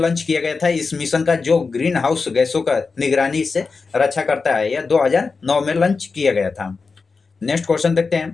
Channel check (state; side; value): quieter; right; 4.5 dB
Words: किया गया था। इस मिशन का जो ग्रीन हाउस गैसों का निगरानी से रक्षा करता है, यह 2009 में लॉन्च किया गया था। नेक्स्ट क्वेश्चन देखते